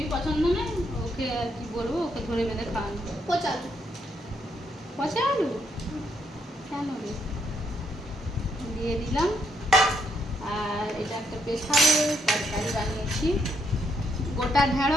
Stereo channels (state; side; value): normal; both; correlation 0.75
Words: পছন্দ নেই, ওকে আর কি বলবো, ওকে ধরে বেঁধে খাওয়ানো। পচা আলু, পচা আলু কেন রে, দিয়ে দিলাম। আর এটা একটা স্পেশাল তরকারি বানিয়েছি, গোটা